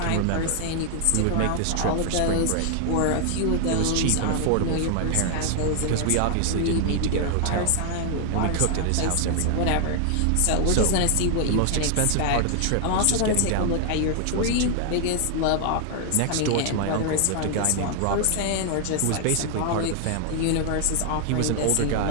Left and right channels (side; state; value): both; different; correlation 0.00